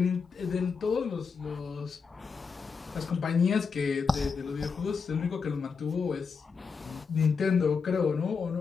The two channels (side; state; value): right; quieter; 5.4 dB